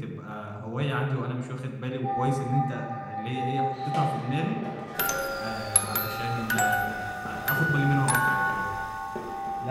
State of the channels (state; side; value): identical; both; correlation 1.00